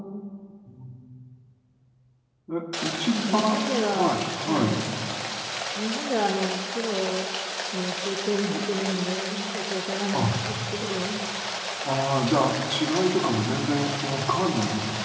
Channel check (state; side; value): identical; both; correlation 1.00